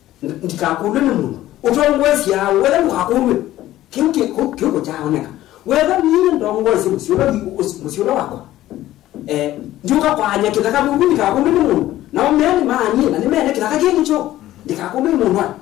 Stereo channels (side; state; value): right; quieter; 14.5 dB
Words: ndikakudwe ni mungu utongwesia wethe mukakudwe kiuko chaoneka wethe ni ndongozi musiola wako njuka kwanya kitaka mungu ndikakudwe ni mungu na omeni maani na nimene kitaka kincho ndikakudwe ni mungu